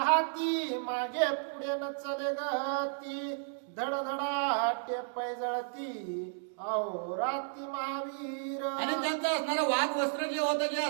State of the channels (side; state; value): left; silent; digital silence